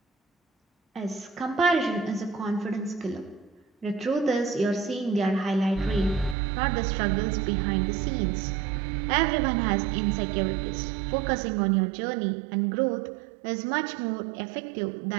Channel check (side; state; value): left; drops out; at 6.4 s